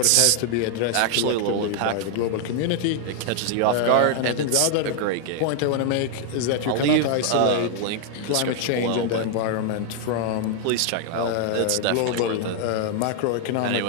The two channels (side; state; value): both; different; correlation 0.00